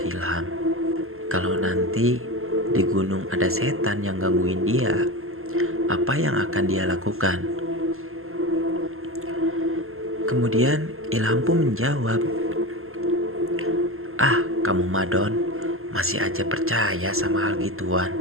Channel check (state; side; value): late; left; 0.62 ms